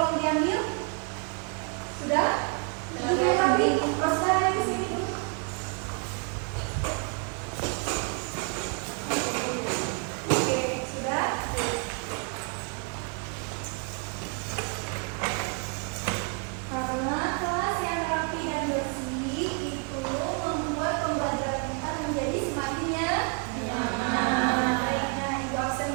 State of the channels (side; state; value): left; quieter; 36.9 dB